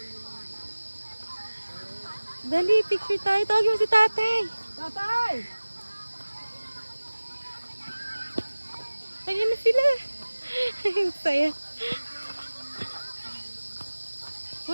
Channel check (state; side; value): inverted; both; correlation -1.00